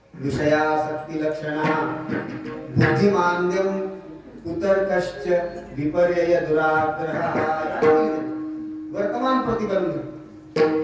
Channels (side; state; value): both; identical; correlation 1.00